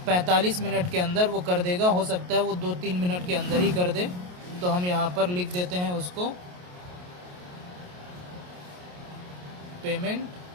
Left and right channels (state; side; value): late; left; 28 ms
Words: 45 मिनट के अंदर वो कर देगा। हो सकता है वो 2-3 मिनट के अंदर ही कर दे। तो हम यहाँ पर लिख देते हैं उसको, पेमेंट